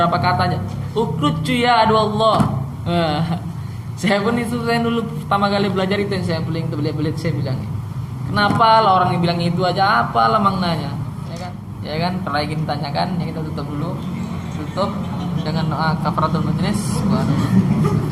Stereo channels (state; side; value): identical; both; correlation 1.00